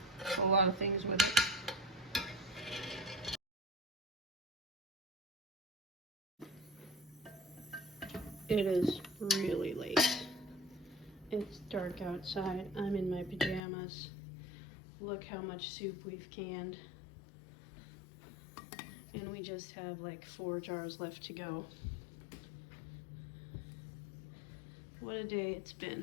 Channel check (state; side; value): drops out; right; at 13.6 s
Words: a lot of things with it. It is really late. It's dark outside. I'm in my pajamas. Look how much soup we've canned. And we just have like 4 jars left to go. What a day it's